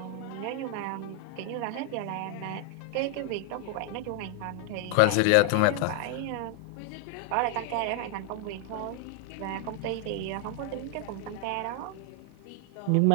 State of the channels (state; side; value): different; both; correlation 0.00